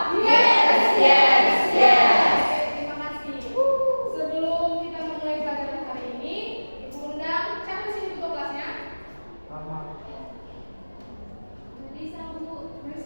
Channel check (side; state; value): both; inverted; correlation -1.00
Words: Yes, yes, yes. Oke, terima kasih. Sebelum kita memulai pelajaran hari ini, Ibu undang siapa di sini ketua kelasnya? Melisa, Bu.